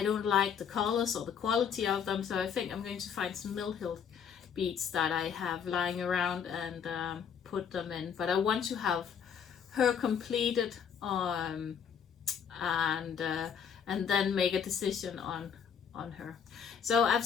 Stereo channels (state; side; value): quieter; right; 7.4 dB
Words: don't like the colors or the quality of them. So I think I'm going to find some Mill Hill beads that I have lying around and put them in. But I want to have her completed and then make a decision on her. So I've